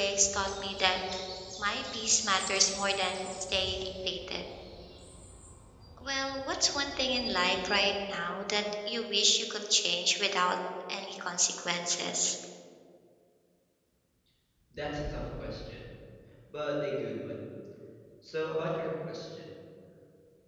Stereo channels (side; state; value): both; identical; correlation 1.00